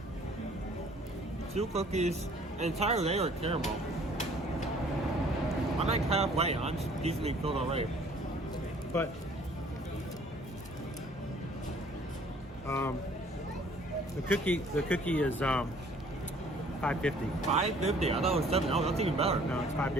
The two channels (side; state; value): both; normal; correlation 0.56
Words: 2 cookies, an entire layer of caramel. I'm like halfway. I'm just decently filled already. But the cookie is $5.50. $5.50. I thought it was $7. Oh, that's even better. No, it's